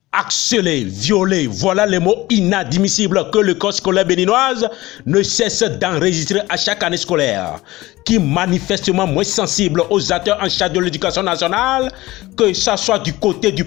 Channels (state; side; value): quieter; right; 18.5 dB